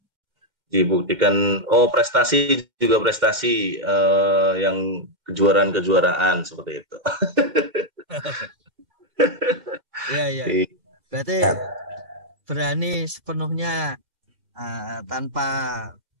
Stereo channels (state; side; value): late; left; 2.1 ms